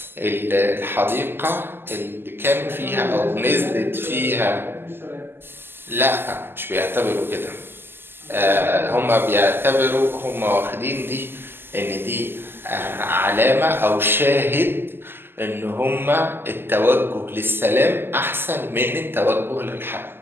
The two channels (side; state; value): left; late; 0.11 ms